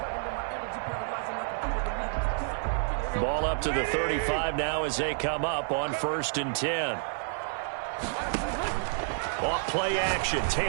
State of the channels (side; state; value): left; silent; 58 dB below the other